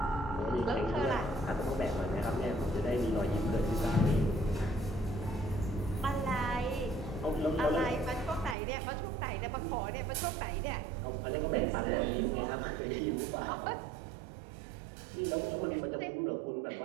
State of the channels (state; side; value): drops out; left; at 8.6 s